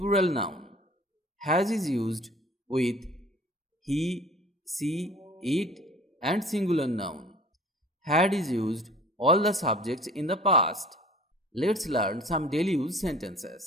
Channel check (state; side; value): normal; both; correlation 0.47